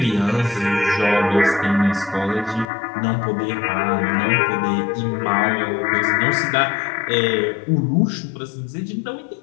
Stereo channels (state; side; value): drops out; right; at 2.7 s